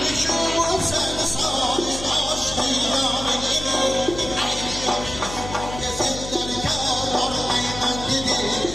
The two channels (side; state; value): left; noise; hum, 10 dB below the sound